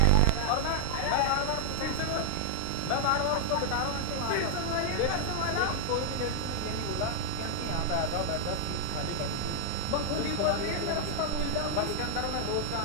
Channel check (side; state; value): both; different; correlation 0.00